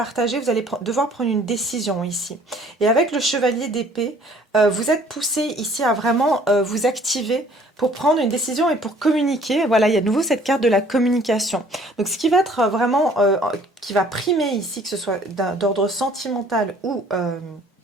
vous allez devoir prendre une décision ici. Et avec le chevalier d'épée, vous êtes poussé ici à vraiment vous activer pour prendre une décision et pour communiquer. Voilà, il y a de nouveau cette carte de la communication. Donc ce qui va être vraiment, qui va primer ici, que ce soit d'ordre sentimental ou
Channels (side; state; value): both; normal; correlation 0.56